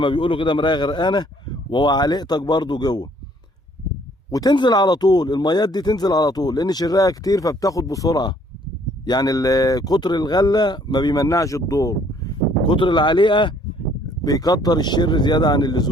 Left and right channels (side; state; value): both; normal; correlation 0.61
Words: بيقولوا كده مرايه غرقانه، وعليقتك برضو جوه، وتنزل على طول. الميات دي تنزل على طول لان شرها كتير فبتاخد بسرعه. يعني كتر الغله ما بيمنعش الدور، كتر العليقه بيكتر الشر زياده عن